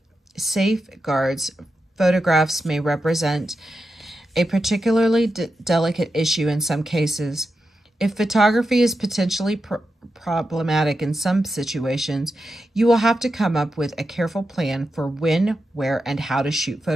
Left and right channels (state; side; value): normal; both; correlation 0.89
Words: safeguards. Photographs may represent a particularly delicate issue in some cases. If photography is potentially problematic in some situations, you will have to come up with a careful plan for when, where, and how to shoot